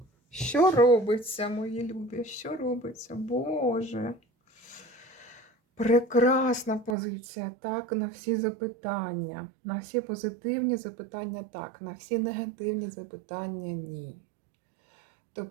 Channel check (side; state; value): left; drops out; at 7.0 s